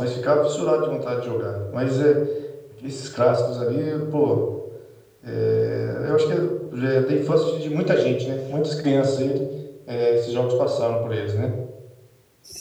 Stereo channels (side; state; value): both; identical; correlation 1.00